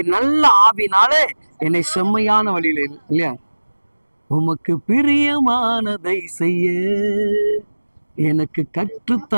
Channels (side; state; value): both; inverted; correlation -1.00